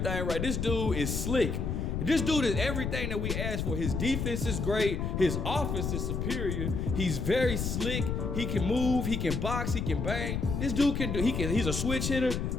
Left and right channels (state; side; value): noise; left; rumble, 2 dB below the sound